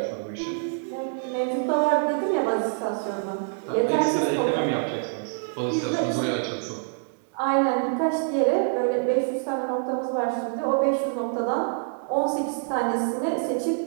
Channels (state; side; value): silent; left; digital silence